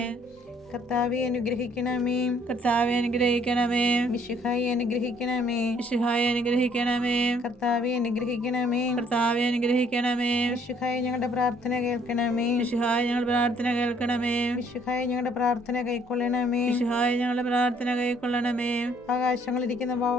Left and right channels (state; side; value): normal; both; correlation 0.63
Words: കർത്താവെ അനുഗ്രഹിക്കണമേ. കർത്താവെ അനുഗ്രഹിക്കണമേ. മിശിഹായെ അനുഗ്രഹിക്കണമേ. മിശിഹായെ അനുഗ്രഹിക്കണമേ. കർത്താവെ അനുഗ്രഹിക്കണമേ. കർത്താവെ അനുഗ്രഹിക്കണമേ. മിശിഹായെ ഞങ്ങളുടെ പ്രാർത്ഥന കേൾക്കണമേ. മിശിഹായെ ഞങ്ങളുടെ പ്രാർത്ഥന കേൾക്കണമേ. മിശിഹായെ ഞങ്ങളുടെ പ്രാർത്ഥന കൈക്കൊള്ളണമേ. മിശിഹായെ ഞങ്ങളുടെ പ്രാർത്ഥന കൈക്കൊള്ളണമേ. ആകാശങ്ങളിരിക്കുന്ന